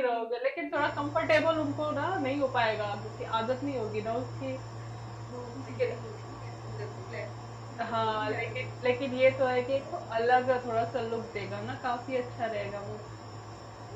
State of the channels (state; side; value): identical; both; correlation 1.00